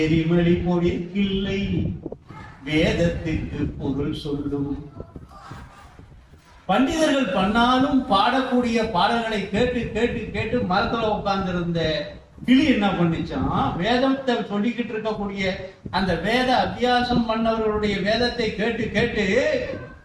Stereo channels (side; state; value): both; identical; correlation 1.00